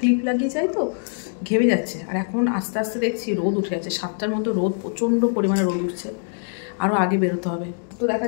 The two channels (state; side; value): silent; right; digital silence